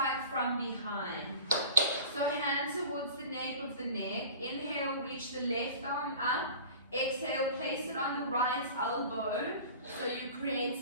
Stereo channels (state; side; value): inverted; both; correlation -0.41